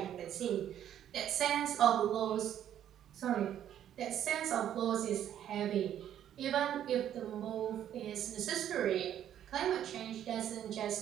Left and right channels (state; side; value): quieter; left; 10.6 dB